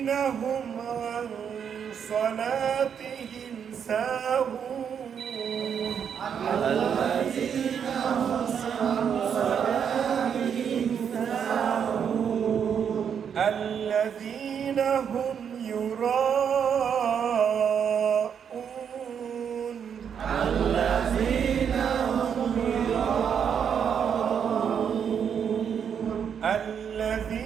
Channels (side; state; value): left; quieter; 7.7 dB